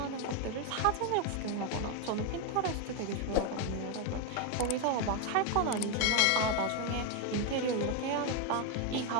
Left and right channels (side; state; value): both; different; correlation 0.02